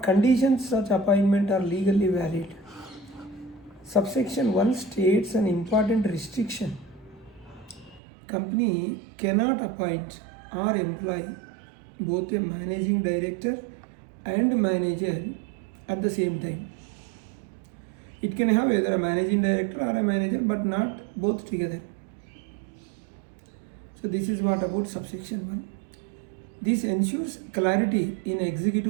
conditions such appointment are legally valid. Subsection 1 states an important restriction. Company cannot appoint or employ both a managing director and manager at the same time. It can have either a managing director or a manager, but not both together. So this is what about subsection 1. This ensures clarity in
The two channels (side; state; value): left; drops out; at 8.0 s